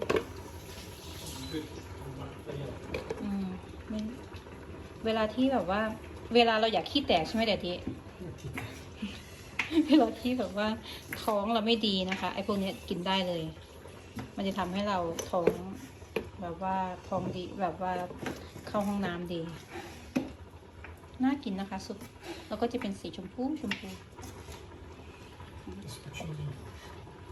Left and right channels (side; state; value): both; identical; correlation 1.00